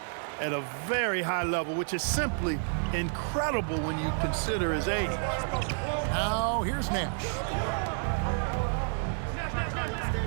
at a very high level, which is simply incredible when you consider his age. Now here's Nash.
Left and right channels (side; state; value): left; silent; 58 dB below the other